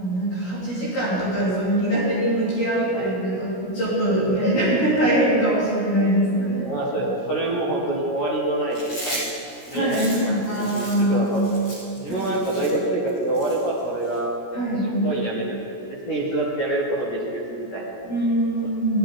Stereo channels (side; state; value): right; late; 16 ms